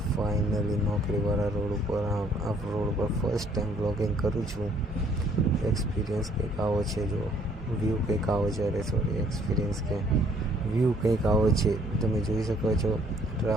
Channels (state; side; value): normal; both; correlation 0.62